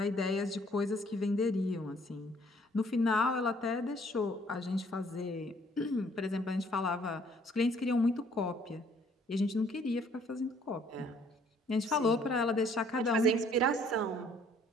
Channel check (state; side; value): normal; both; correlation 0.61